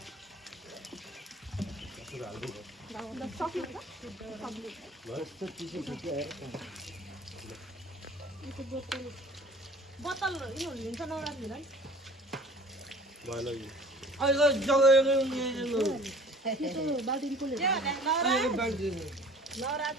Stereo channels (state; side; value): normal; both; correlation 0.47